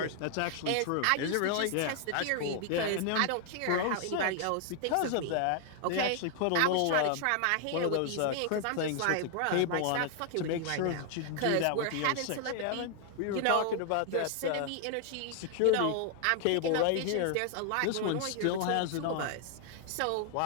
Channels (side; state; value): both; different; correlation 0.00